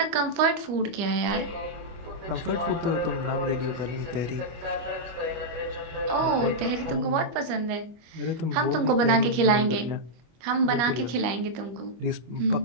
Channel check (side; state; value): left; late; 25 ms